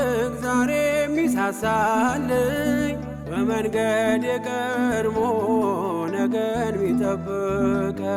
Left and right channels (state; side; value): identical; both; correlation 1.00